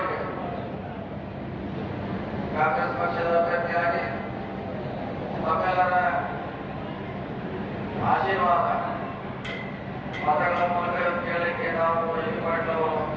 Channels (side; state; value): both; identical; correlation 1.00